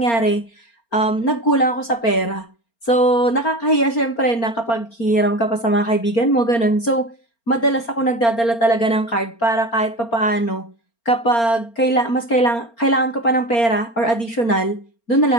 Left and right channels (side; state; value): right; late; 4.3 ms